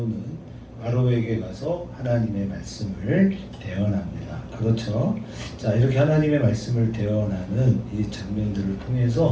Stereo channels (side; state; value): both; identical; correlation 1.00